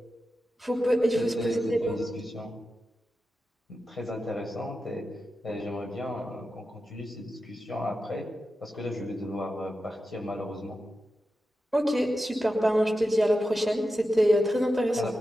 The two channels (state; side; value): normal; both; correlation 0.91